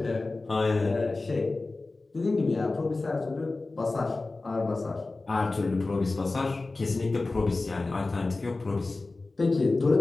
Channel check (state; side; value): quieter; right; 3.4 dB